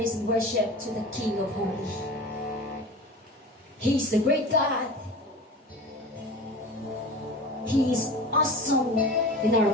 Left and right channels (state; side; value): normal; both; correlation 0.35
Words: and worship to the King of Holy. He is the great God. He is awesome in our